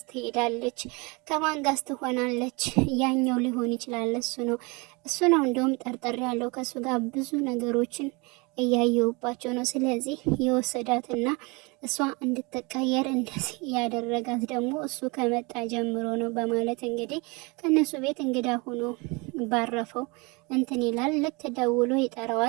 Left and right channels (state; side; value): quieter; left; 28.1 dB